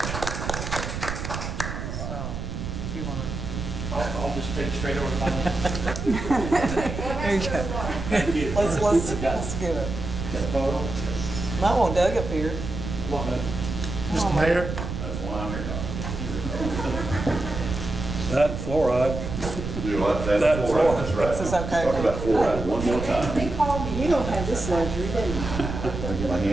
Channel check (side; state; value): right; noise; rumble, 6 dB below the sound